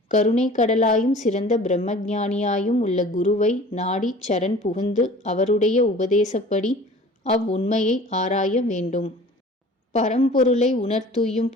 கருணைக் கடலாயும் சிறந்த பிரம்மஞானியாயும் உள்ள குருவை நாடி சரண் புகுந்து அவருடைய உபதேசப்படி அவ்வுண்மையை ஆராய வேண்டும். பரம்பொருளை உணர்த்துய்யும்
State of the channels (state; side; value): normal; both; correlation 0.45